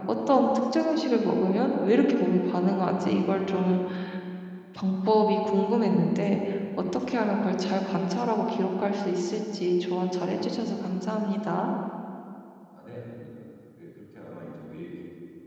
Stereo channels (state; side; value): identical; both; correlation 1.00